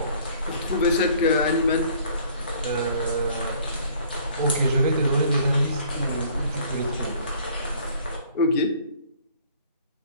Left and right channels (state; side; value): inverted; both; correlation -0.55